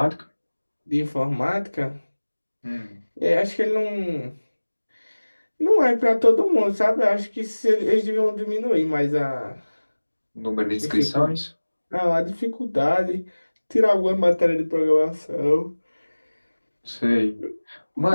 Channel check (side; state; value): both; inverted; correlation -1.00